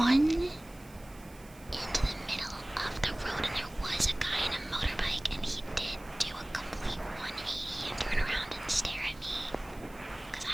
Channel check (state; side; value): noise; right; hiss, 23 dB below the sound